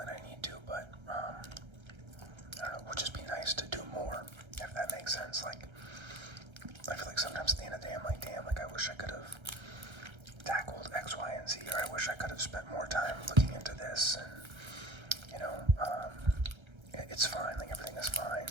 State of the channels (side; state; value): left; late; 1.3 ms